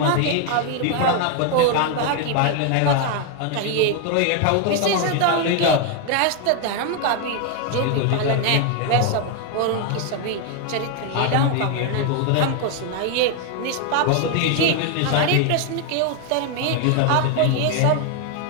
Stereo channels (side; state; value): both; different; correlation 0.01